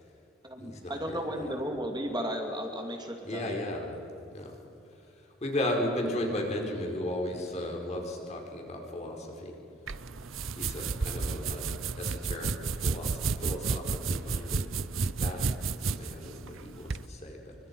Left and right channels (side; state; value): both; normal; correlation 0.59